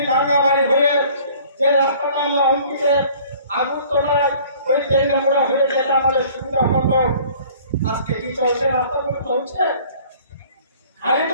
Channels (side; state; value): both; inverted; correlation -0.52